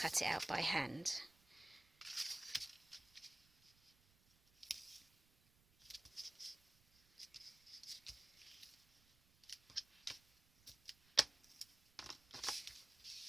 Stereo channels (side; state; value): right; noise; rumble, 30 dB below the sound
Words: it out by hand.